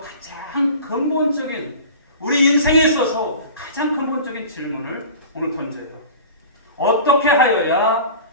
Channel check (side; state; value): both; inverted; correlation -0.39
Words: 가장 근본적인, 우리 인생에 있어서 가장 근본적인 질문을 오늘 던져요. 어떻게 하여야